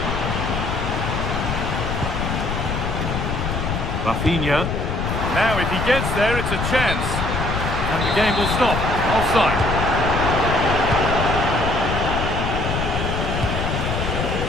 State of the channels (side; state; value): left; noise; rumble, 2 dB below the sound